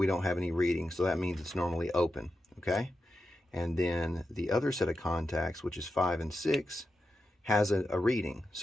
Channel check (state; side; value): normal; both; correlation 0.89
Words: don't have any reading, so that means it's normally open, okay? And then the other set of contacts, which is 5 and 6, has a reading.